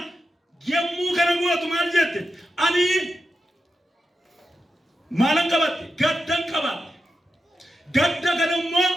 yemmuu kana gootu maal jette? Ani maalan qabatte? Gaddan qabatte. Gadda kana immoo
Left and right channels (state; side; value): normal; both; correlation 0.88